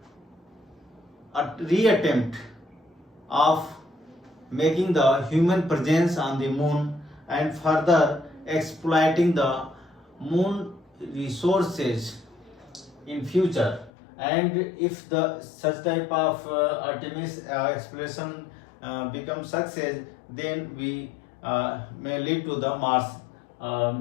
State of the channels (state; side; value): drops out; right; at 13.9 s